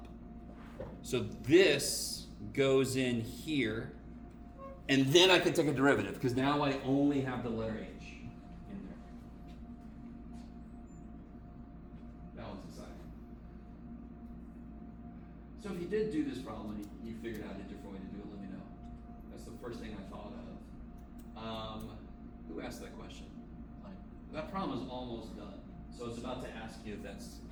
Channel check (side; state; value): both; identical; correlation 1.00